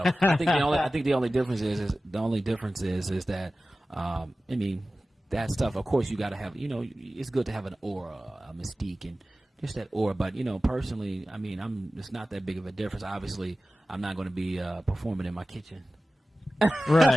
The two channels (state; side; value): normal; both; correlation 0.96